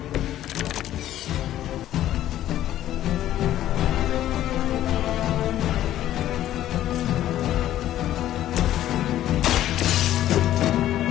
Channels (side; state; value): right; quieter; 12.8 dB